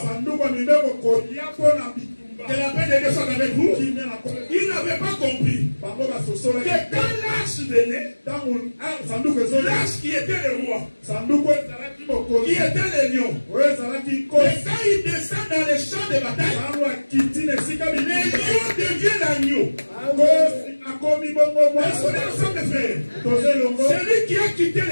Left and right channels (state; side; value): inverted; both; correlation -1.00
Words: Que la paix de Dieu soit avec vous. Ils n'avaient pas compris que quand l'âge venait, l'âge qui était le roi, qui était le lion, et quand il descend dans les champs de bataille, les lions deviennent l'agneau. Est-ce qu'on est ensemble, frères? Celui qui a quitté